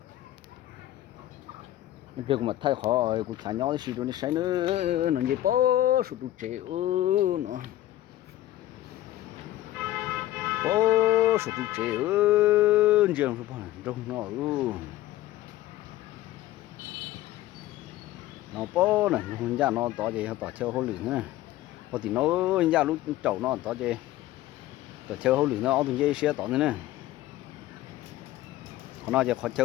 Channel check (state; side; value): quieter; right; 14.8 dB